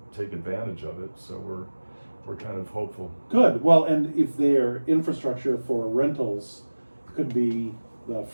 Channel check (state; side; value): inverted; both; correlation -1.00